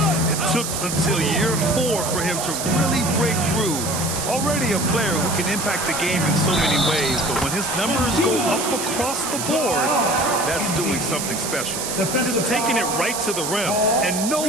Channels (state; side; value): noise; right; hiss, 4 dB below the sound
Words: It took until year 4 for him to really break through. Already a player who can impact the game in so many ways, but when his numbers go up across the board, that's doing something special. Just taking it right to the rim, and no